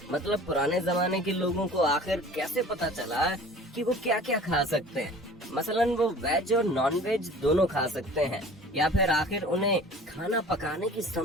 मतलब पुराने जमाने के लोगों को आखिर कैसे पता चला कि वो क्या क्या खा सकते हैं। मसलन वो वेज और नॉन वेज दोनों खा सकते हैं, या फिर आखिर उन्हें खाना पकाने की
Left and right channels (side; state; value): both; normal; correlation 0.45